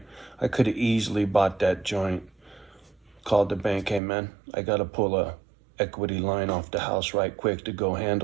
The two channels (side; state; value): left; drops out; at 4.0 s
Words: I could have easily bought that joint called the bank, hey man, I gotta pull a equity line off the house right quick to go